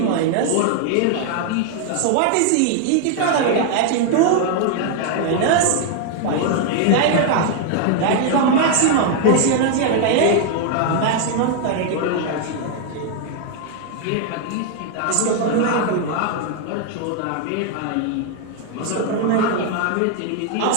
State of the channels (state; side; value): different; both; correlation 0.00